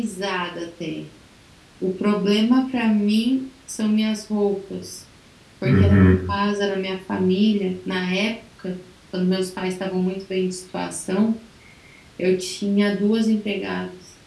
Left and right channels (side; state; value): both; identical; correlation 1.00